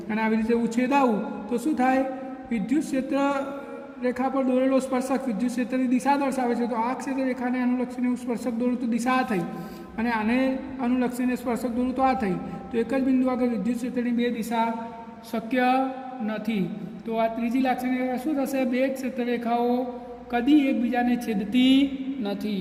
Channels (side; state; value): both; identical; correlation 1.00